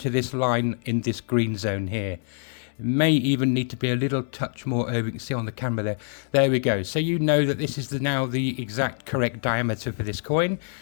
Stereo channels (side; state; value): right; silent; 57 dB below the other